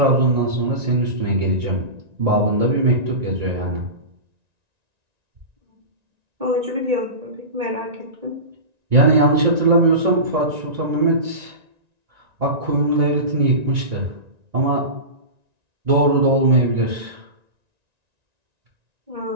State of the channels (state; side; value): late; left; 1.9 ms